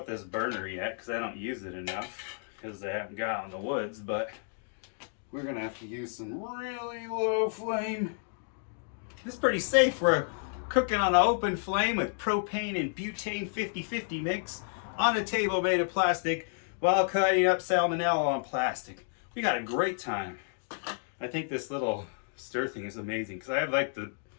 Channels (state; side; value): silent; right; digital silence